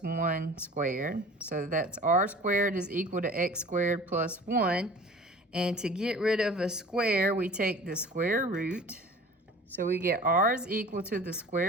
1 squared. So that's r squared is equal to x squared plus 1. And to get rid of a square, we take the square root. So we get r is equal to the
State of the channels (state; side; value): normal; both; correlation 0.43